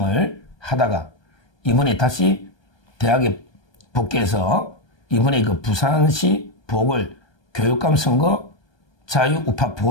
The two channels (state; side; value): late; right; 1.2 ms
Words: 하다가 이번에 다시 대학에 복귀해서 이번에 부산시 보궐 교육감 선거 자유우파